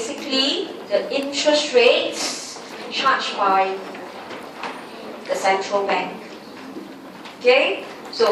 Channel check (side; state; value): both; identical; correlation 1.00